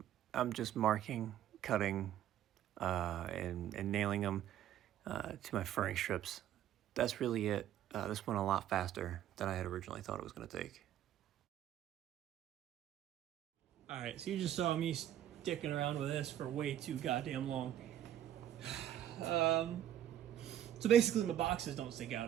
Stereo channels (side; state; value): left; quieter; 11.4 dB